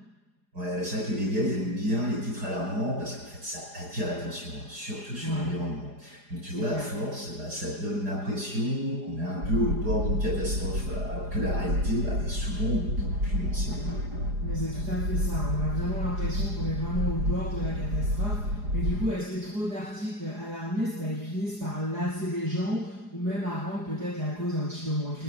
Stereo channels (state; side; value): late; left; 4.9 ms